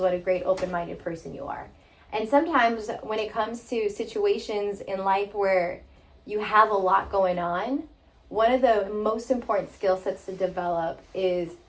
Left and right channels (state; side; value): identical; both; correlation 1.00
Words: a great open-minded person you are. And sometimes when it comes to situations in life where you have a lot going on, one of the most important skill sets to develop is